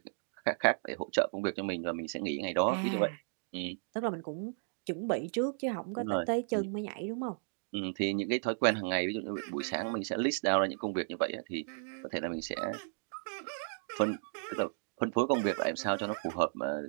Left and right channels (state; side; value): silent; left; digital silence